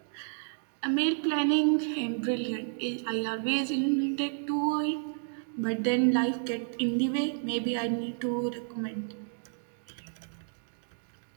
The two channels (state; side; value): silent; left; digital silence